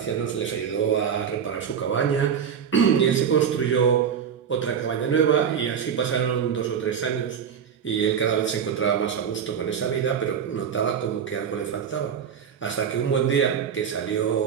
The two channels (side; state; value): left; quieter; 7.6 dB